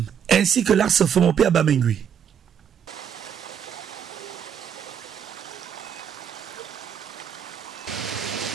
ainsi que l'axe Fomopéa Bamengui.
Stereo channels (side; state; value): left; quieter; 8.3 dB